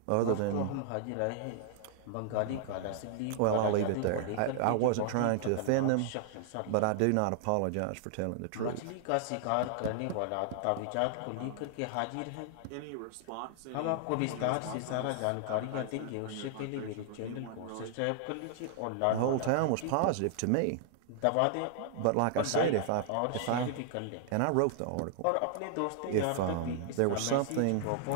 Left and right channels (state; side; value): different; both; correlation 0.00